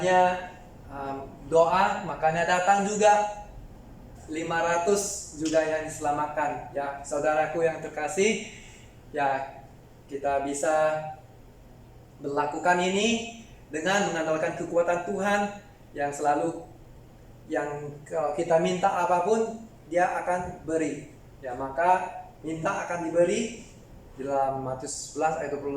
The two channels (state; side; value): identical; both; correlation 1.00